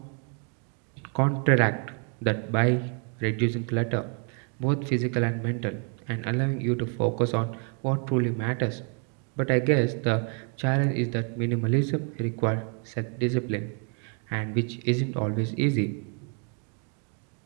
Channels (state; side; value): quieter; left; 39.7 dB